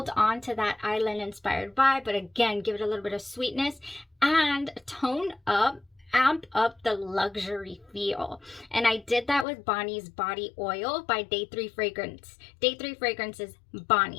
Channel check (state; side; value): drops out; right; at 9.5 s